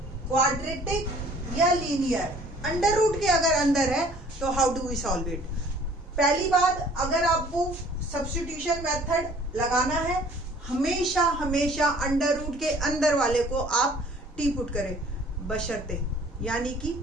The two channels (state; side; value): normal; both; correlation 0.53